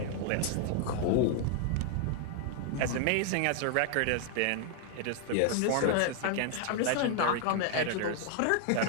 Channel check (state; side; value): different; both; correlation 0.00